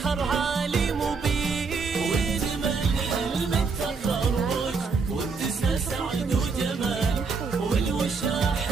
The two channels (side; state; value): left; quieter; 4.8 dB